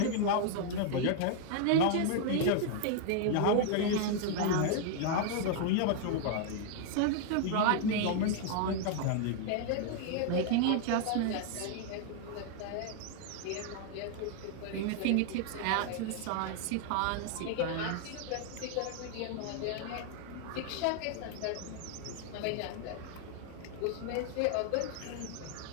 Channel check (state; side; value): different; both; correlation 0.00